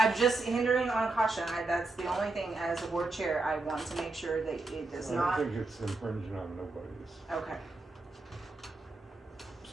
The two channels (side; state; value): left; quieter; 3.1 dB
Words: just hindering on caution. That's the only thing as a board chair. I want to make sure that it does I not. don't think it's infringing on nobody's, Okay.